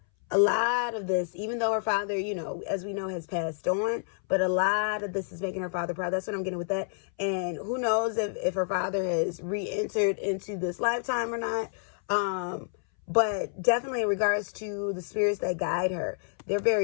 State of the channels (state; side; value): silent; right; 59 dB below the other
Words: A lot of this, even though her father, as we know, has passed on, but a lot of this is making her father proud. That's what I'm getting with that. And who knows if her father has re-entered into this lifetime or not. But definitely in regards to the spirits that guide her, they're